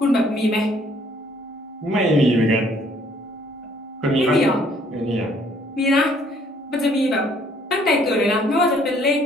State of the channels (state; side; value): normal; both; correlation 0.62